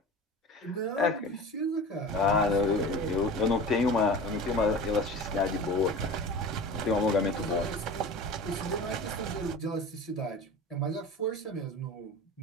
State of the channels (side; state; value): both; normal; correlation 0.35